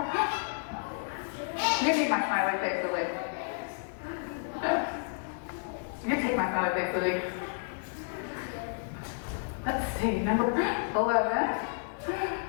You need my smiley face, Olivia. You take my smiley face, Olivia. Let's see, number 11.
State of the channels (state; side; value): silent; right; digital silence